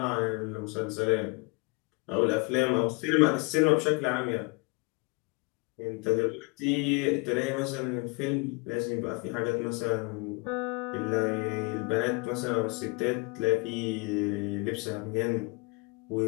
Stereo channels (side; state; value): right; quieter; 29.1 dB